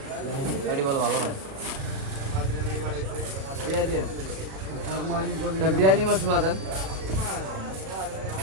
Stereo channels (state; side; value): late; left; 37 ms